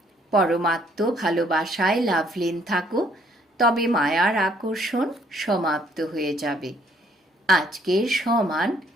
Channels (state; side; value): normal; both; correlation 0.66